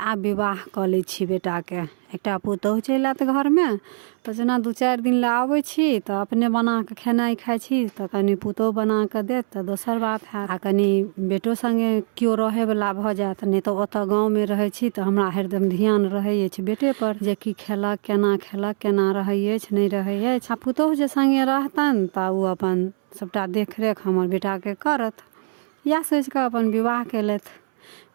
विवाह कऽ लै छी बेटा के। एकटा पुतोहु चलि आयत घर में तो जेना 2-4 दिन ला आबै छी तो अपने बना के खेनाई खाई छी तो कनी पुतोहु बना के देत तो दोसर बात है। आ कनी बेटो संगे केओ रहे वाला भ जायत, नहीं तो ओतऽ गाँव में रहे छी तो हमरा हरदम ध्यान रहे अछि बेटे पर, जे की खेलक, केना रहे अछि नहीं रहे अछि। आ पुतोहु जे संगे रहतन तो उ अपन सबटा देख रेख हमर बेटा के करत। या सोच के अपन विवाह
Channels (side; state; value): left; silent; 64 dB below the other